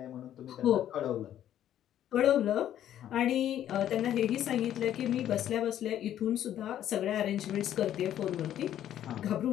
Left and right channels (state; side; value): quieter; right; 11.2 dB